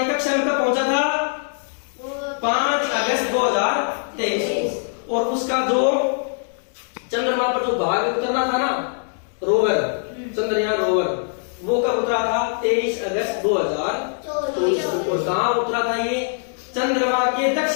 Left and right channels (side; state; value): right; silent; digital silence